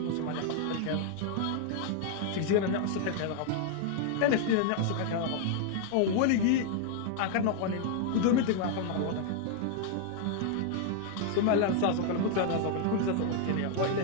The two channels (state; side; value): different; both; correlation 0.00